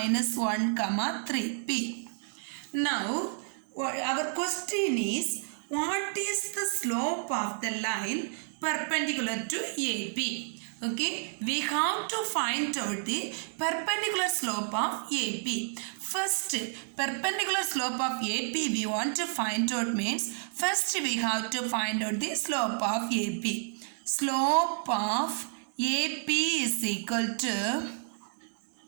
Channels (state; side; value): silent; left; 57 dB below the other